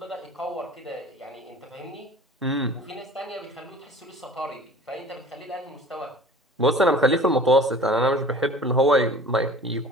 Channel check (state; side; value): normal; both; correlation 0.44